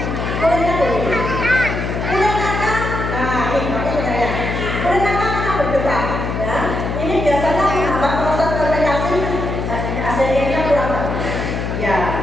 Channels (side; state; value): left; noise; hum, 3 dB below the sound